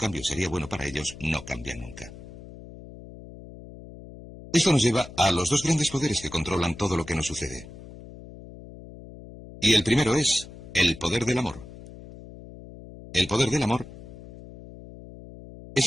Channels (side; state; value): left; noise; hum, 16 dB below the sound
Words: sería bueno para ellos, no cambian nunca. Esto nos lleva a los dos grandes poderes que controlan todo lo que nos sucede. Y el primero es el poder del amor. El poder del amor es